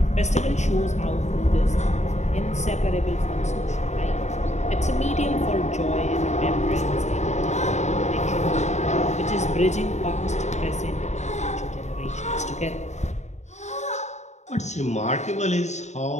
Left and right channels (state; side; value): late; right; 0.33 ms